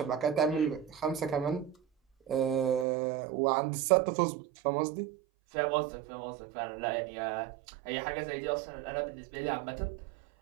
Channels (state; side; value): drops out; left; at 2.9 s